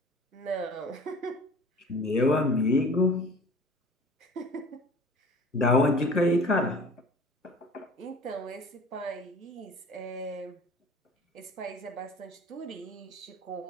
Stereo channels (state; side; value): normal; both; correlation 0.44